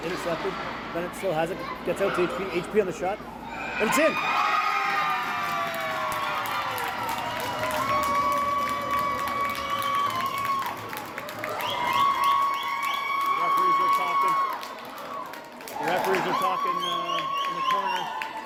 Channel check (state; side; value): identical; both; correlation 1.00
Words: Intercepted. Bennett still has it. Gets out to HP. HP on the shot. And it's in! The referees are talking in the corner.